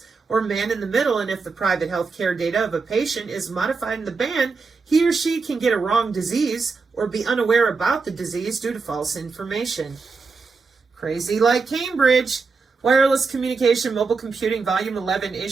or man in the middle, and if the private healthcare data of a patient is modified in the band, he or she can get a wrong disease or be unaware about the disease due to false information. Crazy like Cambridge. Wireless Communication, Mobile Computing, Volume 11,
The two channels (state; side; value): quieter; left; 4.6 dB